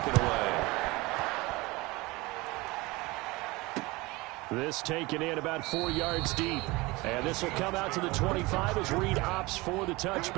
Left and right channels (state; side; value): quieter; left; 22.6 dB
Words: it away. This taken in about 4 yards deep. And this will come out to the 25 as Reed opts for the